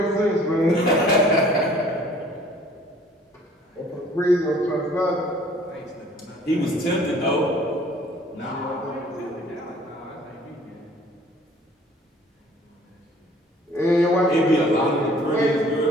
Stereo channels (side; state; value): both; normal; correlation 0.54